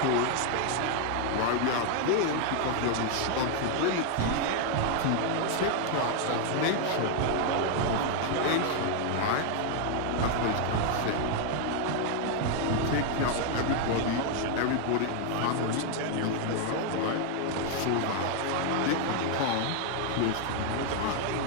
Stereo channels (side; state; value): both; different; correlation 0.00